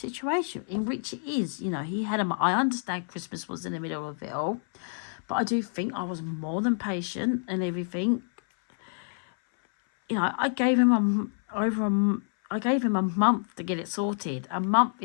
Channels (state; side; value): silent; right; 59 dB below the other